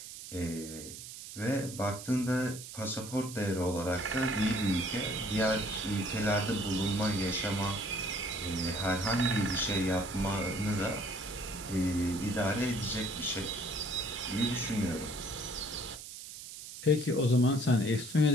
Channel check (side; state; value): right; noise; hiss, 12 dB below the sound